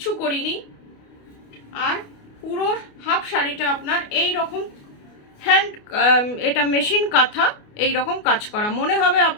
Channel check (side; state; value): right; late; 29 ms